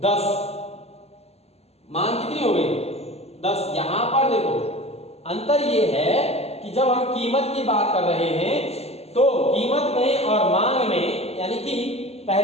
10, मांग कितनी हो गई 10। यहां पर देखो अंतर ये है कि जब हम कीमत की बात कर रहे हैं, तो कीमत में और मांग में, यानी कि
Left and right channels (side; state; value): right; late; 0.30 ms